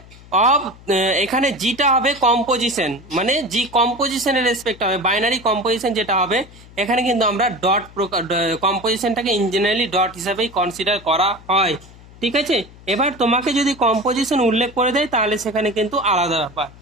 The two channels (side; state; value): left; noise; hum, 21 dB below the sound